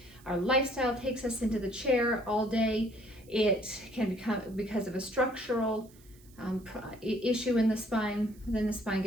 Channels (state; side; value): noise; right; hiss, 27 dB below the sound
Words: our lifestyle takes us into the chair all day. It can become because of a structural issue in the spine. Then the spine